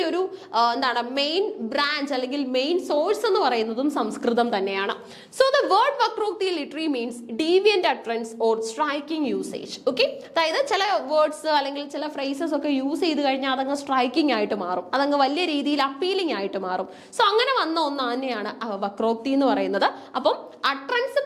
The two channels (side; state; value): both; identical; correlation 1.00